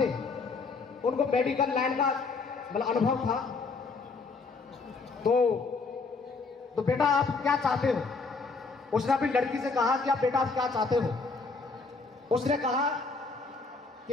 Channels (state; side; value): quieter; right; 4.2 dB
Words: उनको मेडिकल लाइन का मतलब अनुभव था। तो बेटा आप क्या चाहते हो? उसने अपनी लड़की से कहा कि आप बेटा आप क्या चाहते हो? उसने कहा कि